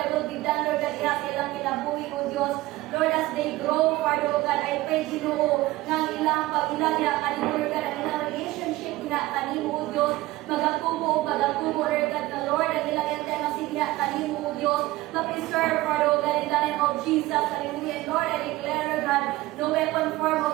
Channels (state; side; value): quieter; left; 18.2 dB